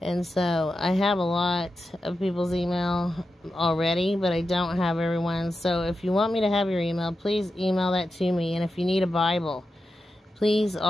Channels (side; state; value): both; normal; correlation 0.90